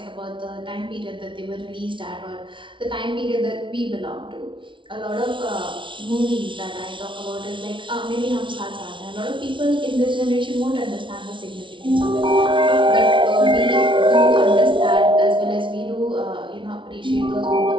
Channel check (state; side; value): late; left; 0.24 ms